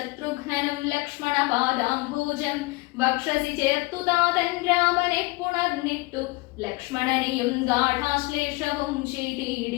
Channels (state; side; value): quieter; right; 24.0 dB